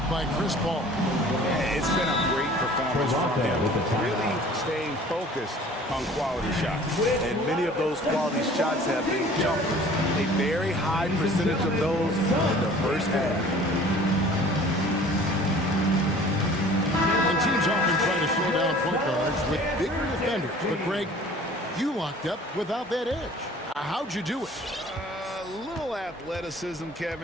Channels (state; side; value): normal; both; correlation 0.48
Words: by Chris Paul. Yeah, it's been a great performance from him. Really staying focused on quality shots. And many of those quality shots have been jumpers. A very high percentage of those in the first half. And teams often try to slow down point guards with bigger defenders. But Greg, you locked up without that edge. How'd you do it? A little athleticism,